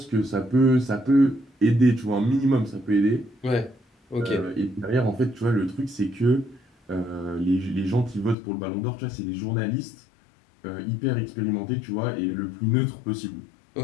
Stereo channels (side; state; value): right; drops out; at 8.3 s